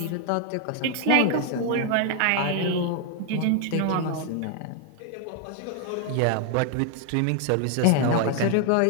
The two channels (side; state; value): both; different; correlation 0.00